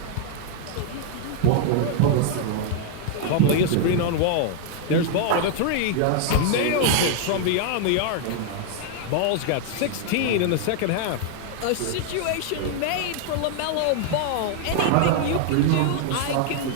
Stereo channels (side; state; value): both; different; correlation 0.00